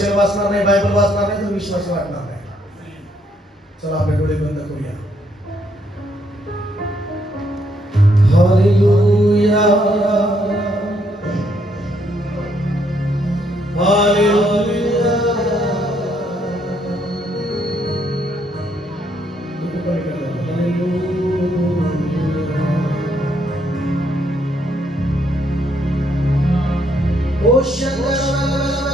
वाचणार नाही, बायबल वाचणार नाही तर विश्वास वाढणार नाही. चला आपले डोळे बंद करूया. हालेलुया. हालेलुया. ओ शंकर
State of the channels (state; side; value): normal; both; correlation 0.72